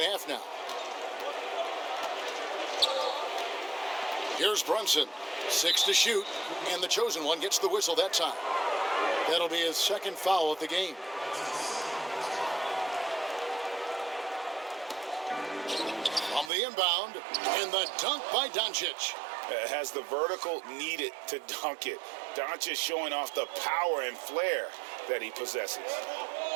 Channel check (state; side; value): drops out; left; at 16.5 s